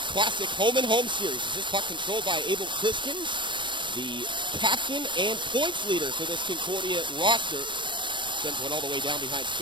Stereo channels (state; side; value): late; left; 0.23 ms